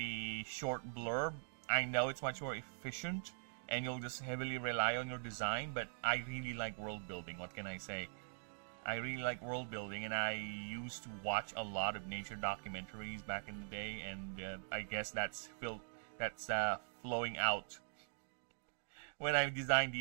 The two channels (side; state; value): left; silent; digital silence